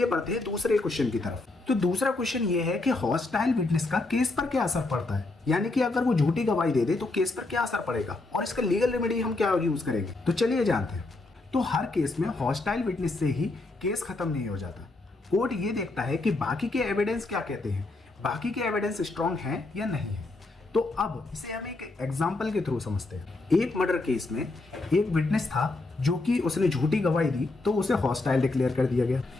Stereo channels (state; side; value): quieter; right; 3.2 dB